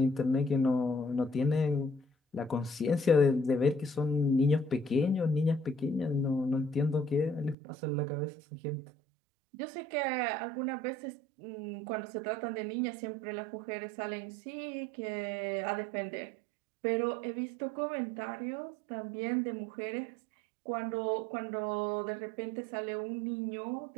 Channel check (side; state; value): left; drops out; at 7.6 s